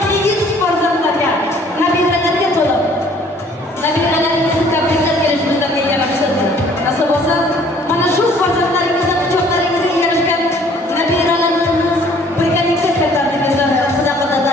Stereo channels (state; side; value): normal; both; correlation 0.57